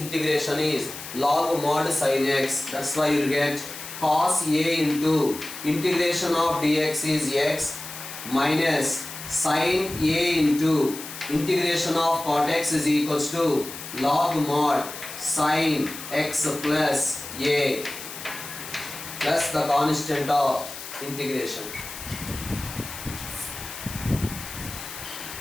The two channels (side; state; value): left; noise; hiss, 11 dB below the sound